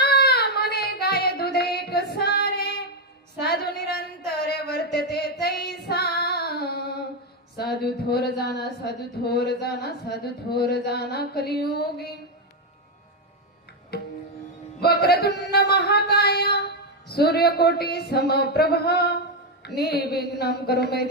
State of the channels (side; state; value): both; normal; correlation 0.05